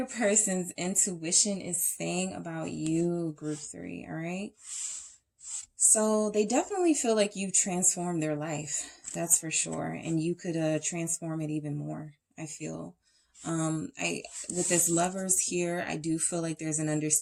person's intuition is saying about you, group 3. All right. So they definitely feel like you've transformed their life. That's for sure. And you could transform it even more, I feel. With this Lovers here, I do feel like there's an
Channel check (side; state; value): both; identical; correlation 1.00